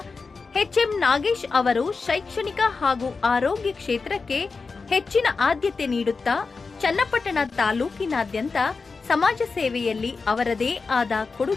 ಎಚ್.ಎಂ. ನಾಗೇಶ್ ಅವರು ಶೈಕ್ಷಣಿಕ ಹಾಗೂ ಆರೋಗ್ಯ ಕ್ಷೇತ್ರಕ್ಕೆ ಹೆಚ್ಚಿನ ಆದ್ಯತೆ ನೀಡುತ್ತಾ ಚನ್ನಪಟ್ಟಣ ತಾಲೂಕಿನಾದ್ಯಂತ ಸಮಾಜ ಸೇವೆಯಲ್ಲಿ ಅವರದೇ ಆದ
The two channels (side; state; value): right; quieter; 4.5 dB